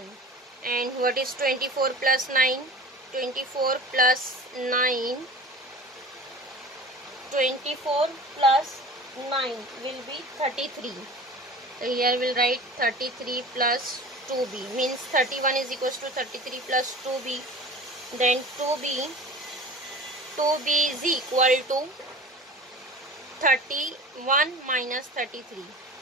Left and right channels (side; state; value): both; normal; correlation 0.38